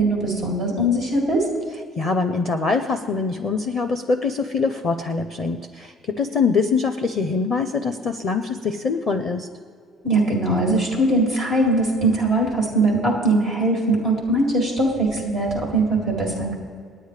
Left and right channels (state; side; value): normal; both; correlation 0.48